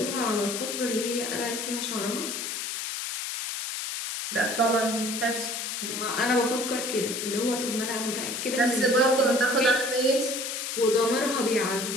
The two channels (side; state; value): left; noise; hiss, 4 dB below the sound